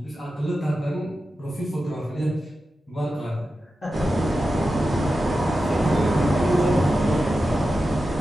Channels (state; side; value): normal; both; correlation 0.92